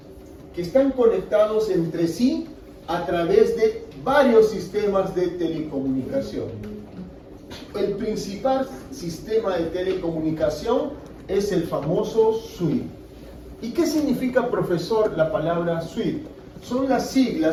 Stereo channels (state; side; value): identical; both; correlation 1.00